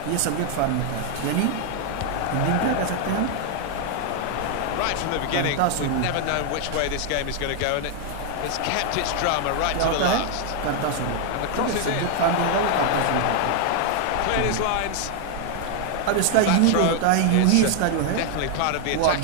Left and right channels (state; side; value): different; both; correlation 0.00